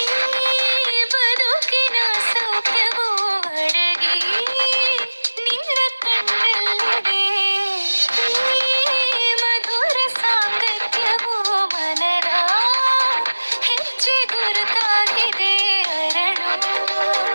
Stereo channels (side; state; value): both; inverted; correlation -1.00